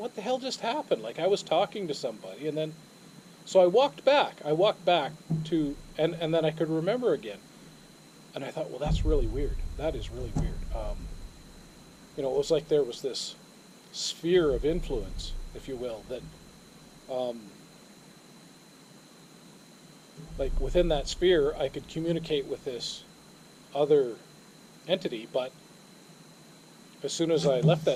the hell just happened? Like, I was talking to somebody, and then, so I walked back to, and then I could remember again. And I thought, well, that's really weird. That is really weird. It was like there was this sphere of influence, if you will, that, like within that sphere, I could communicate with this other entity, but as soon as I left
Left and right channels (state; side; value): identical; both; correlation 1.00